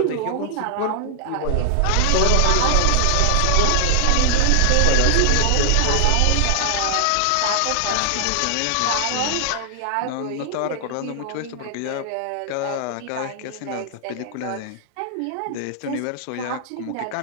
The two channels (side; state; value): both; different; correlation -0.01